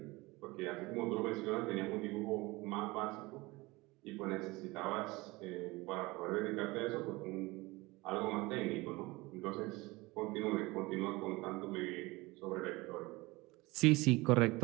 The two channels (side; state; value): left; quieter; 22.3 dB